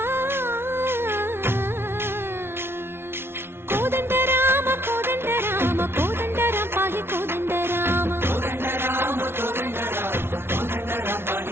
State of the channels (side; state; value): left; late; 0.12 ms